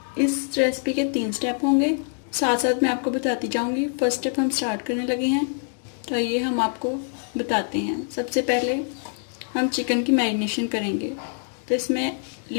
इस रेसिपी के 3 स्टेप होंगे, साथ साथ मैं आपको बताती जाऊंगी। फर्स्ट स्टेप हम स्टार्ट करने लगे हैं, तो ये हम आपको बताते हैं। सबसे पहले हम चिकन की मैरिनेशन करेंगे, तो इसमें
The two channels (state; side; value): silent; right; 56 dB below the other